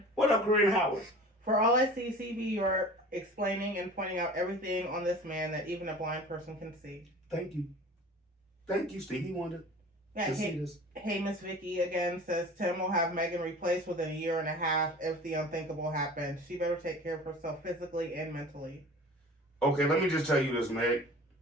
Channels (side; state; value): both; normal; correlation 0.41